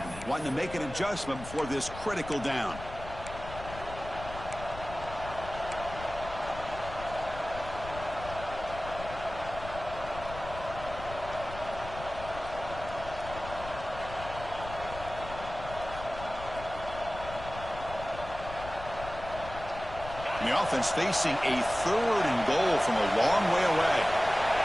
Wanting to make an adjustment before this critical down. And the offense facing a 3rd and goal from a long way away.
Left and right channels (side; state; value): left; noise; rumble, 12 dB below the sound